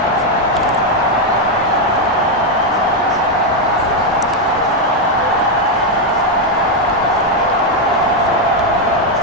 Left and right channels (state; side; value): normal; both; correlation 0.03